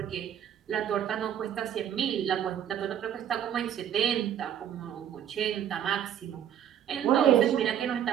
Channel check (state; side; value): quieter; left; 9.9 dB